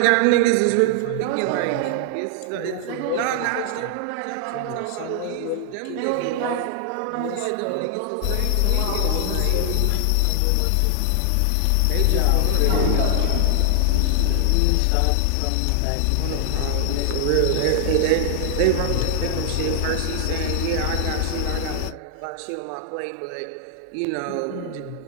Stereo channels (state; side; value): different; both; correlation 0.00